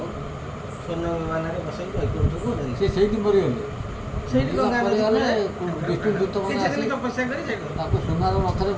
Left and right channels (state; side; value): identical; both; correlation 1.00